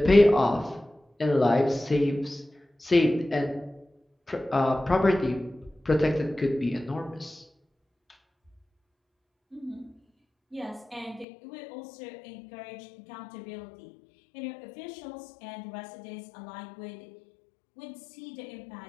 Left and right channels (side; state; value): right; drops out; at 11.2 s